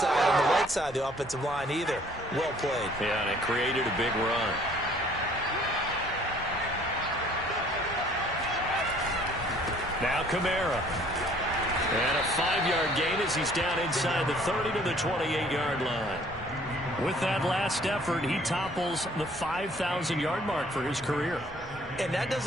on the right side of the offensive line either. Well played. Yeah, and it created a big run. Now Kamara. And a 5-yard gain as he's down inside the 30 to the 28-yard line. With that last effort, he topples the 5,000-yard mark for his career. And that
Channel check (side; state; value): both; normal; correlation 0.58